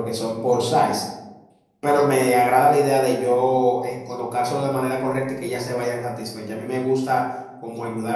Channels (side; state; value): both; identical; correlation 1.00